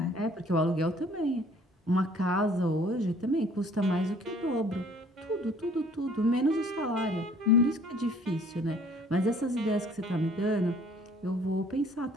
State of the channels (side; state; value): both; normal; correlation 0.56